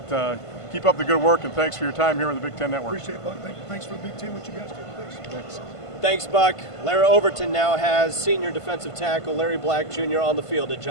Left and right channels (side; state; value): right; late; 1.5 ms